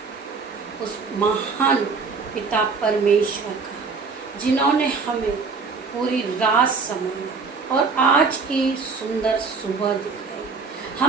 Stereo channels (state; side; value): quieter; left; 4.8 dB